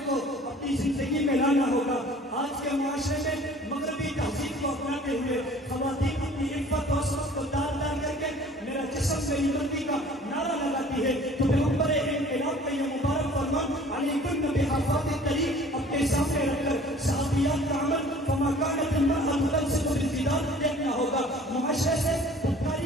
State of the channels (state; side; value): normal; both; correlation 0.49